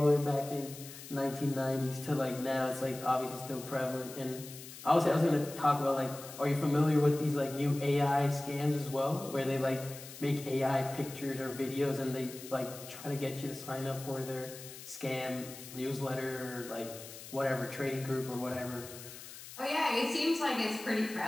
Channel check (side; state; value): left; noise; hiss, 14 dB below the sound